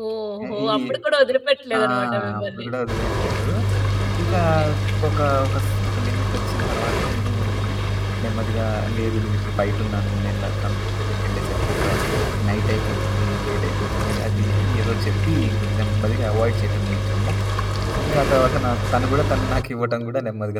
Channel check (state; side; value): identical; both; correlation 1.00